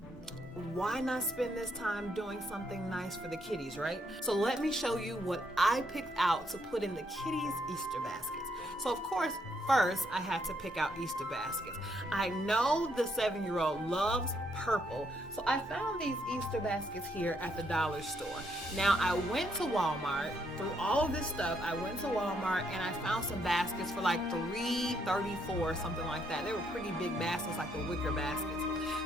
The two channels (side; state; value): both; normal; correlation 0.74